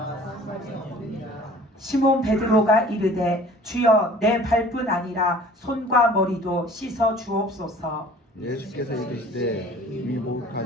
시몬 베드로가 이르되 주여 내 발뿐 아니라 손과 머리도 씻어 주옵소서. 예수께서 이르시되 이미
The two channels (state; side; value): normal; both; correlation 0.48